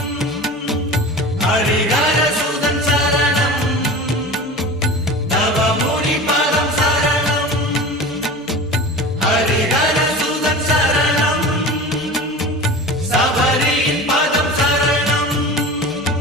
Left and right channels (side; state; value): both; normal; correlation 0.34